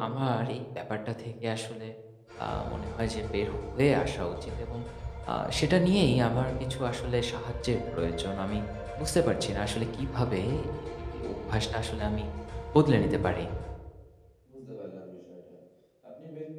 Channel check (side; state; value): both; identical; correlation 1.00